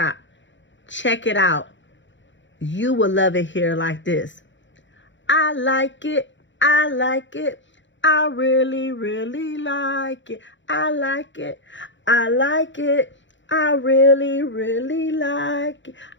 Check it out. You will love it here like this. I like it. I like it. I really, really like it. I like it. I like it. I really, really like it.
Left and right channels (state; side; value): late; right; 0.54 ms